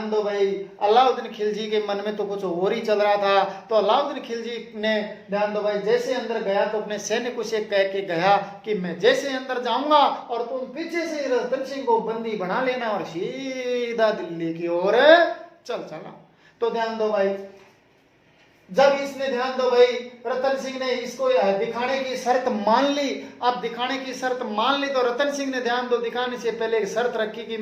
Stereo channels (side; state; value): both; identical; correlation 1.00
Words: दो भाई, अलाउद्दीन खिलजी के मन में तो कुछ और ही चल रहा था। तो अलाउद्दीन खिलजी ने, ध्यान दो भाई, जैसे अंदर गया तो अपने सैनिकों से कह के गया कि मैं जैसे अंदर जाऊंगा और तुम पीछे से रतन सिंह को बंदी बना लेना और सीधा दिल्ली की ओर चल चला। तो ध्यान दो भाई, जब इसने ध्यान दो भाई रतन सिंह ने इसको दिखाने की शर्त मान ली। अब दिखाने की शर्त मान ली तो रतन सिंह ने ध्यान दो दिखाने से पहले एक शर्त रखी कि